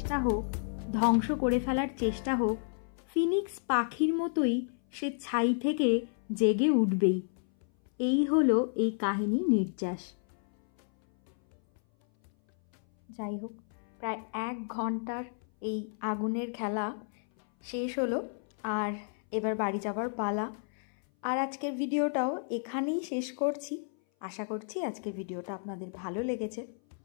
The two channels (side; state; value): right; silent; 57 dB below the other